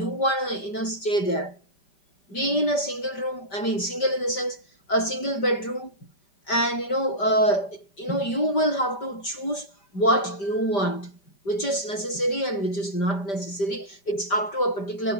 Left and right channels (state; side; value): late; right; 5.1 ms